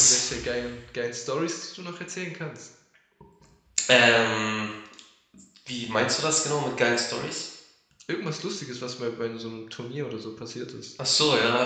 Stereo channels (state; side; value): identical; both; correlation 1.00